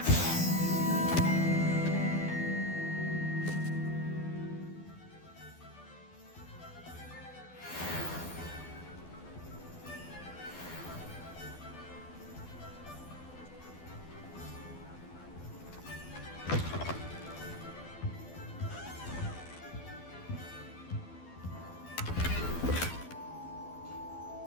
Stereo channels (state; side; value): late; right; 12 ms